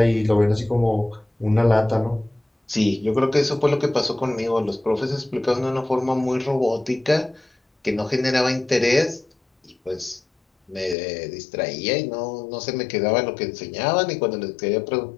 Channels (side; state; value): right; drops out; at 11.0 s